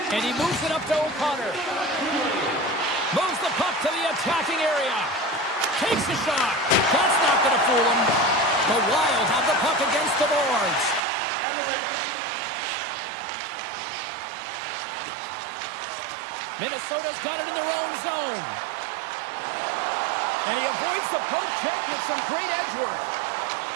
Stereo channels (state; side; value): drops out; left; at 11.0 s